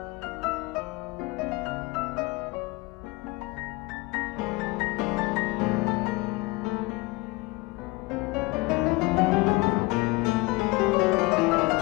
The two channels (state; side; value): quieter; right; 23.6 dB